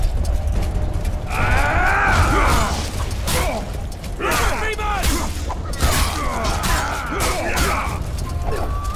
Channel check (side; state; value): both; identical; correlation 1.00